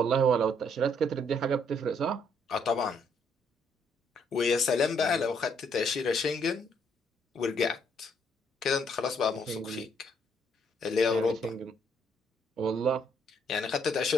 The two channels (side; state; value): both; normal; correlation 0.69